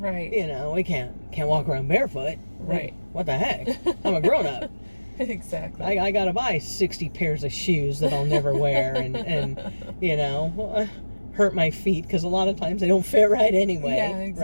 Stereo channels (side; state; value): both; inverted; correlation -1.00